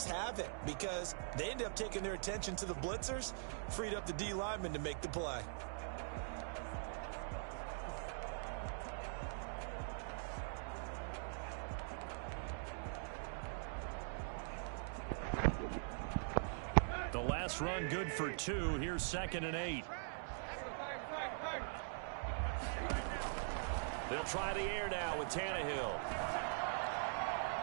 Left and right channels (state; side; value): silent; left; digital silence